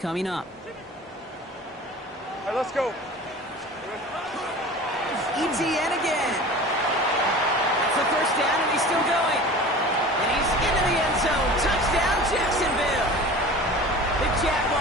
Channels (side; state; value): both; normal; correlation 0.39